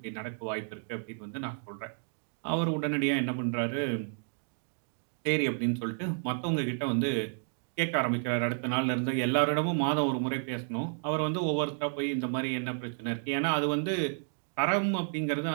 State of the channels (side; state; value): left; silent; digital silence